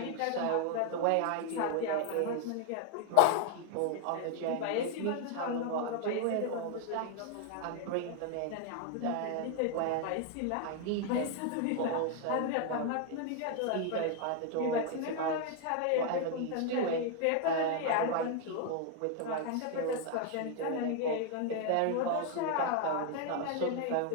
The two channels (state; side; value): different; both; correlation 0.00